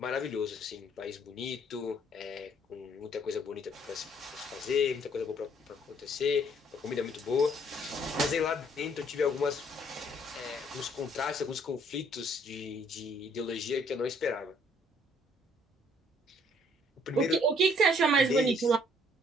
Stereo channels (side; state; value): both; normal; correlation 0.63